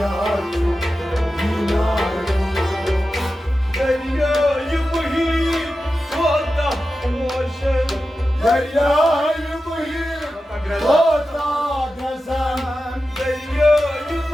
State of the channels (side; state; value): both; normal; correlation 0.92